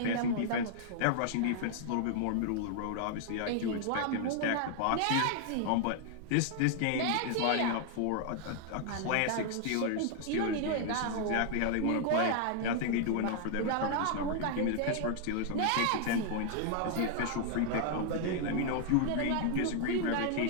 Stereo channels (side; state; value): both; different; correlation 0.00